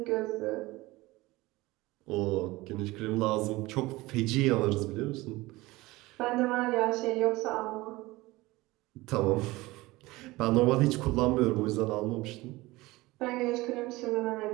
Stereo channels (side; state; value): left; quieter; 20.2 dB